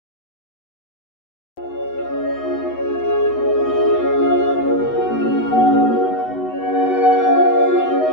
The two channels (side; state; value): right; late; 8.0 ms